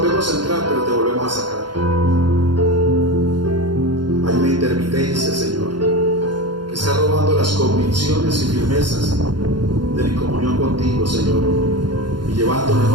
a entrar, pero te volvemos a sacar. Hay una intermitencia, Señor, que está robando las convicciones y firmezas de mi comunión contigo, Señor, y llevando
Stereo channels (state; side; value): late; left; 0.71 ms